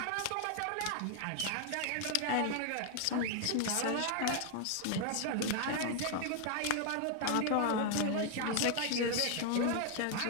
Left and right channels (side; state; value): both; different; correlation 0.00